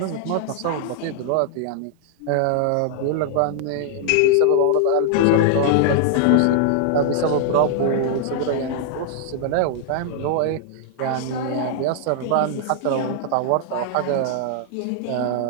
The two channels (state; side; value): different; both; correlation -0.01